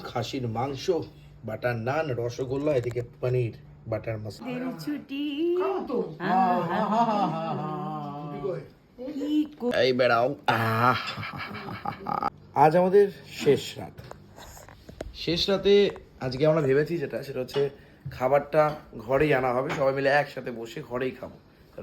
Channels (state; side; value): identical; both; correlation 1.00